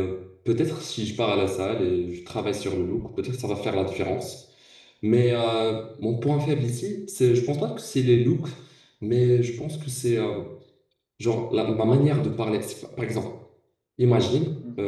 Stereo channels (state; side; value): identical; both; correlation 1.00